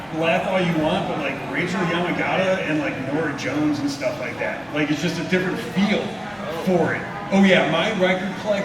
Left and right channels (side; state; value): left; noise; rumble, 29 dB below the sound